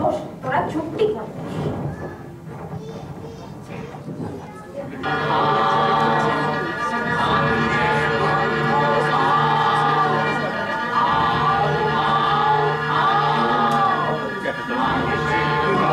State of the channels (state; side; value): identical; both; correlation 1.00